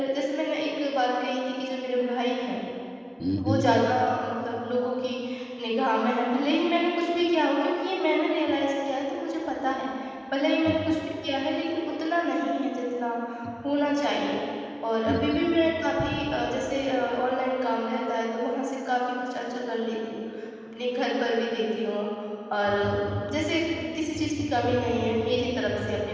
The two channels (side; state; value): both; identical; correlation 1.00